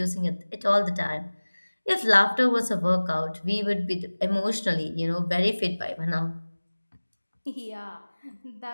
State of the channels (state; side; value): inverted; both; correlation -1.00